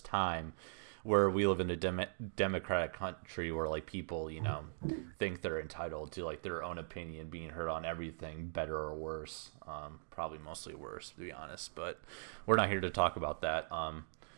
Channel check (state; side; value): silent; left; digital silence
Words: time where we live in a democratic country where like people, think they're entitled to like their own opinion being heard on everything, better or worse. Probably mostly worse, to be honest, but we're not here to talk about that.